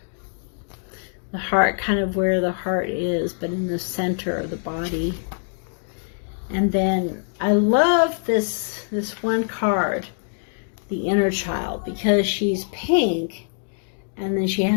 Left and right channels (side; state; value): right; silent; 63 dB below the other